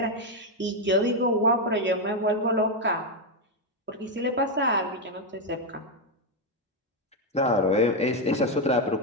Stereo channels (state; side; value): normal; both; correlation 0.04